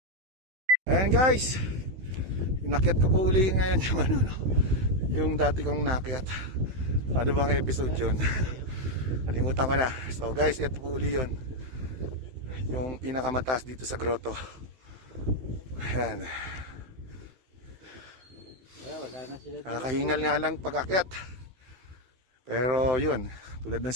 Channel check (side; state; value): left; late; 16 ms